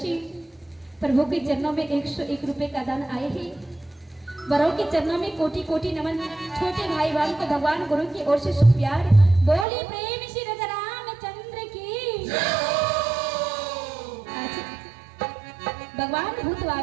प्रभु के चरणों में 101 रुपए का दान आए हैं। बड़ों के चरणों में कोटि कोटि नमन। छोटे भाई बहन को भगवान गुरु की ओर से शुभ प्यार। बोली प्रेम श्री राजा रामचंद्र की। आज भगवान भूत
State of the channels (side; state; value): left; drops out; at 9.7 s